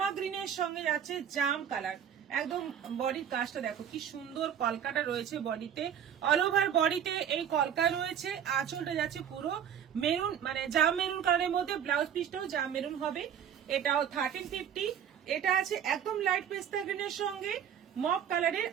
গ্রিনের সঙ্গে যাচ্ছে জাম কালার। একদম বডির কাজটা দেখো কি সুন্দর, কলকাটা রয়েছে বডিতে, অল ওভার বডিতে এই কলকা রয়েছে। আঁচলটা যাচ্ছে পুরো মেরুন, মানে জাম মেরুন কালারের মধ্যে, ব্লাউজ পিসটাও জাম মেরুন হবে। এটাও 1350। এটা আছে একদম লাইট পেস্তা গ্রিনের সঙ্গে মক কালারের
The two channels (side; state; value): left; quieter; 8.9 dB